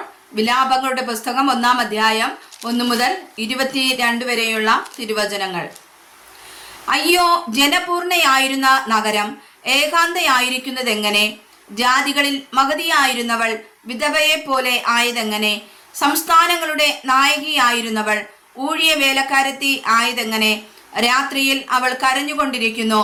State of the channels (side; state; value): both; identical; correlation 1.00